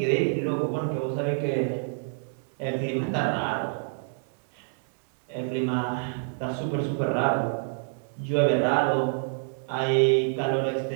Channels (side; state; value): left; silent; digital silence